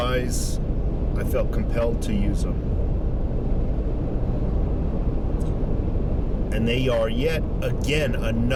I felt compelled to use them. And they are yet again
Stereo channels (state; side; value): identical; both; correlation 1.00